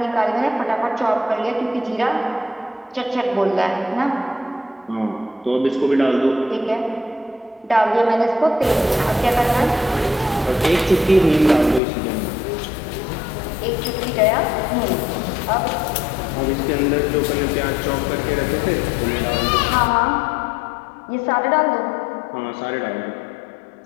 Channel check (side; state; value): right; drops out; at 11.8 s